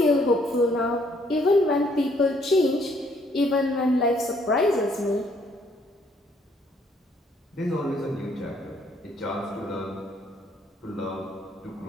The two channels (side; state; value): both; normal; correlation 0.67